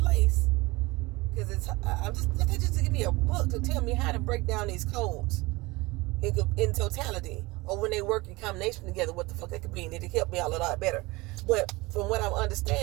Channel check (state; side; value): quieter; left; 22.5 dB